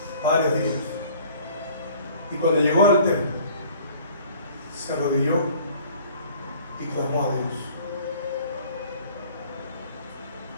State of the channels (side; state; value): both; inverted; correlation -0.52